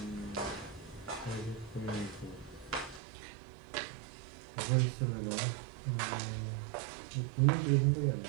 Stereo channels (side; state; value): left; drops out; at 3.0 s